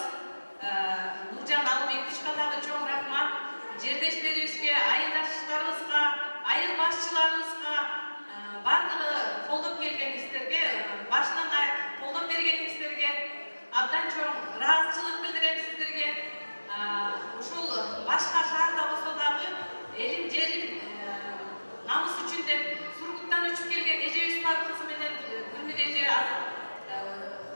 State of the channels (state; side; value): inverted; both; correlation -1.00